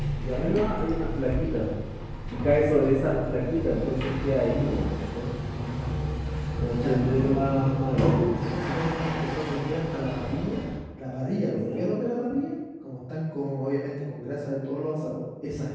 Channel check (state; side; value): identical; both; correlation 1.00